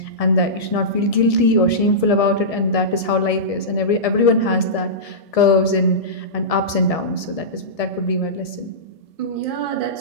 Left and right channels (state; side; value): late; right; 1.7 ms